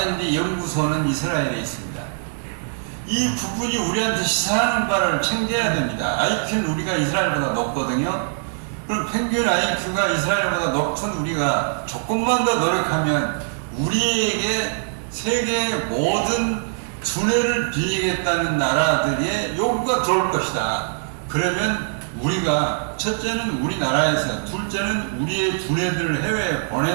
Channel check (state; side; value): silent; left; digital silence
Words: 연구소는 이스라엘에 있습니다. 이 부분이 우리한테 시사하는 바를 챙겨야 됩니다. IQ는 우리가 이스라엘보다 높거든요. 그럼 평균 IQ가 이스라엘보다 높은 우리가 조금만 더 노력하면 우리에게 세계의 모든 두뇌를 빌리겠다는 나라들의 요구가 들어올 것이다. 그러면 우리가 첫째는 우리나라에서, 둘째는 우리의 두뇌들을 해외에